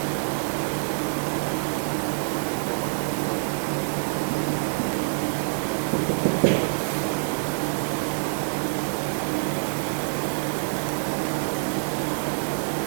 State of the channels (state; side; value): silent; left; digital silence